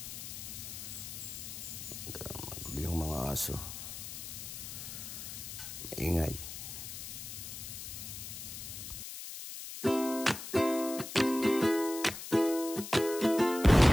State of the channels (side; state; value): left; noise; hiss, 9 dB below the sound